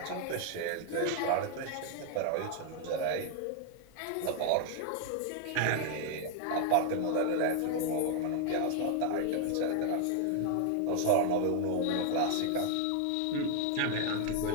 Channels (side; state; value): both; different; correlation 0.00